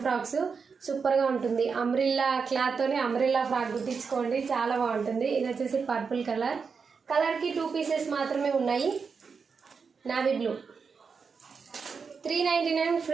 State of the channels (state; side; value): quieter; left; 5.5 dB